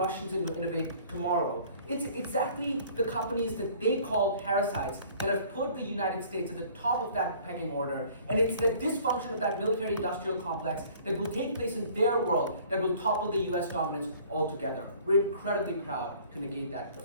innovate tomorrow. It's exactly the companies that they call parasites that have put the United States at the top of that pecking order, and it's the dysfunction of that military-industrial complex that will take place in their world that will topple the US dominance altogether. We're incredibly proud to negate that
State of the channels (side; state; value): both; inverted; correlation -0.53